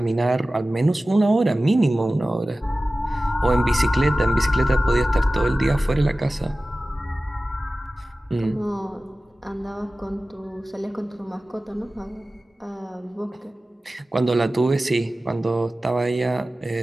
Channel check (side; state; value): both; normal; correlation 0.96